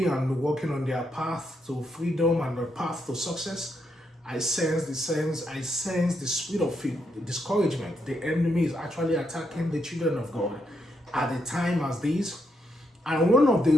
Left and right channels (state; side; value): normal; both; correlation 0.79